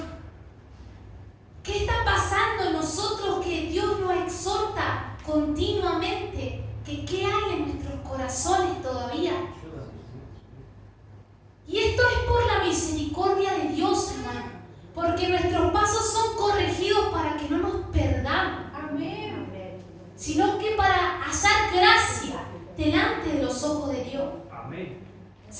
¿Qué está pasando en nosotros que Dios nos exhorta continuamente? Que qué hay en nuestros corazones todavía. Ayúdanos, Y esto es por la misericordia de Dios, hermano, porque nuestros pasos son corregidos para que no nos perdamos, Amén. sino que para hallar gracia delante de los ojos de Dios. Amén.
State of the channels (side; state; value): both; identical; correlation 1.00